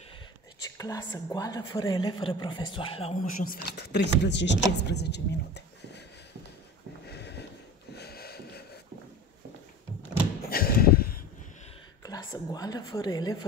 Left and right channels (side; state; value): both; normal; correlation 0.34